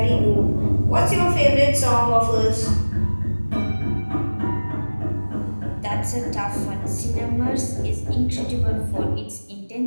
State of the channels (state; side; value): inverted; both; correlation -1.00